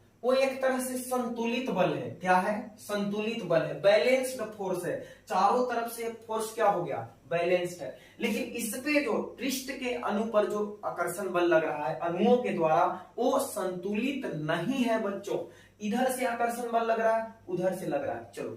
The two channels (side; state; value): both; identical; correlation 1.00